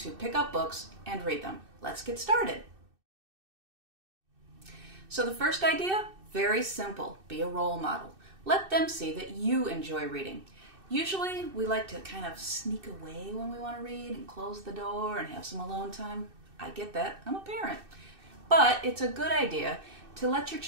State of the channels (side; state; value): left; late; 2.6 ms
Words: pick up books and read them. Let's get started. So the first idea, very simple, be a role model. Let them see that you enjoy reading. Usually we like to kind of sneak away when we want to read and close the door and have some alone time. I get that, I'm a parent. But it's a good idea to let your